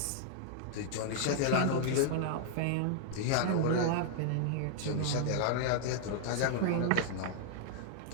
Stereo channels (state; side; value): different; both; correlation -0.01